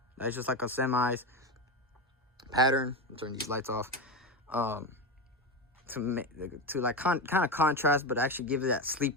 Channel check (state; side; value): normal; both; correlation 0.17